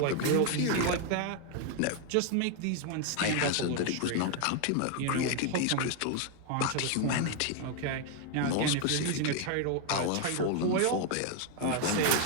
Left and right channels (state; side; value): different; both; correlation 0.00